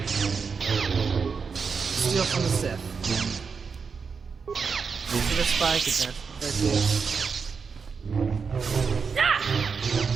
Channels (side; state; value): left; quieter; 5.5 dB